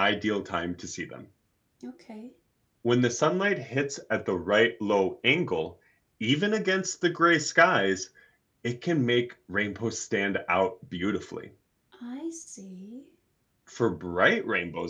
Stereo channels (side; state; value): both; identical; correlation 1.00